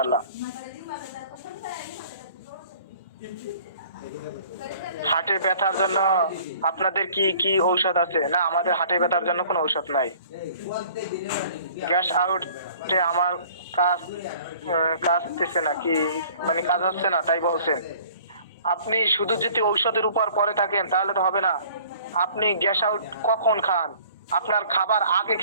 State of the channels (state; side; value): inverted; both; correlation -0.52